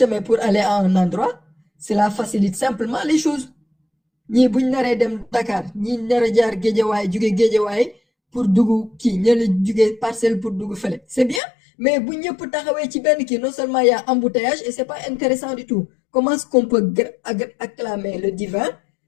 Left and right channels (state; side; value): drops out; right; at 11.4 s